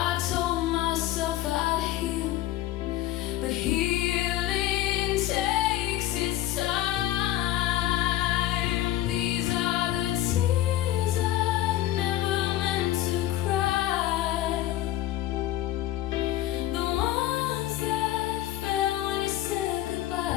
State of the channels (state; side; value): quieter; right; 13.9 dB